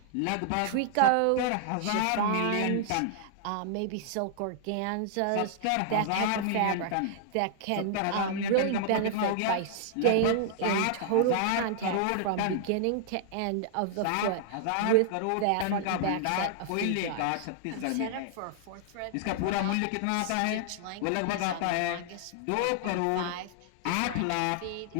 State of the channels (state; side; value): different; both; correlation -0.01